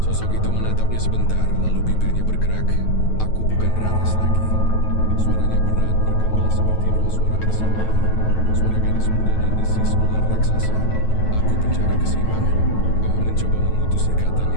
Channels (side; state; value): right; late; 9.2 ms